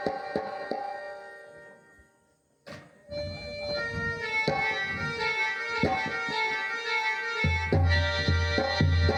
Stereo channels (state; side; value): identical; both; correlation 1.00